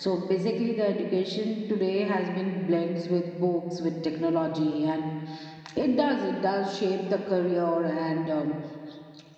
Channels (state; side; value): identical; both; correlation 1.00